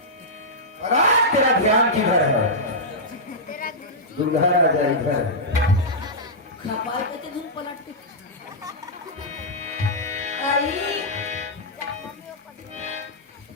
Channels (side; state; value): both; normal; correlation -0.11